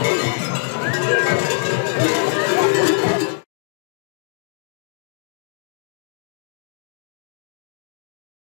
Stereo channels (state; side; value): silent; right; digital silence